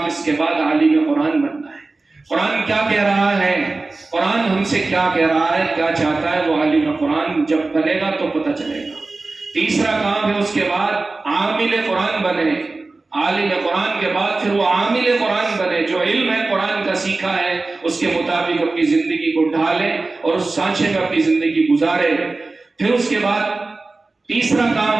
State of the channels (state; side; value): quieter; left; 3.5 dB